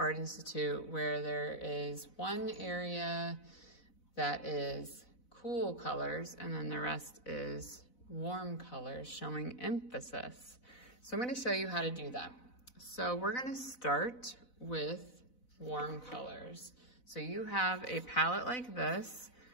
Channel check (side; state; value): right; late; 4.0 ms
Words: Institute, where there is one area that is cool colors and then the rest is warm colors, showing emphasis. So I'm going to show you how to do that. So we're going to start with warm colors. So you have a palette like this.